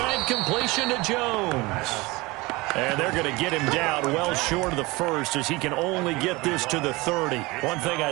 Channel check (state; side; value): quieter; left; 22.8 dB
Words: completion to Jones. And they're going to get him down well short of the first as he can only get this to the 30. One thing I